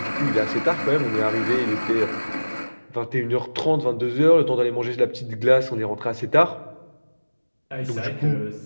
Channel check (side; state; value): both; inverted; correlation -1.00